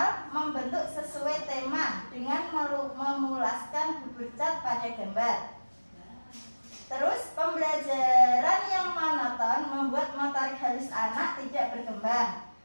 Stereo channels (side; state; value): both; inverted; correlation -1.00